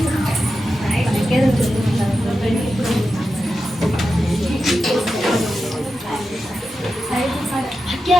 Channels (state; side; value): normal; both; correlation 0.90